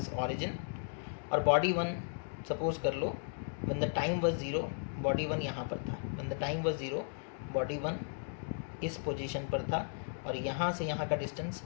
ऑरिजिन, और बॉडी 1 सपोज कर लो when the time was 0, body 1 यहाँ पर था, when the time was 0 body 1 इस पोजीशन पर था, और यहाँ से यहाँ का डिस्टेंस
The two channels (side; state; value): right; silent; digital silence